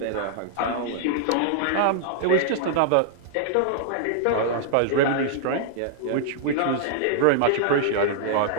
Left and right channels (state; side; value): different; both; correlation -0.01